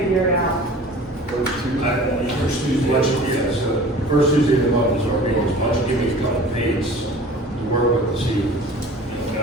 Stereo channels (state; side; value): normal; both; correlation 0.43